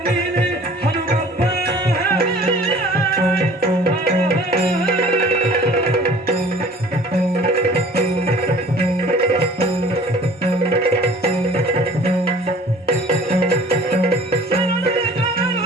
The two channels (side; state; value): both; normal; correlation 0.49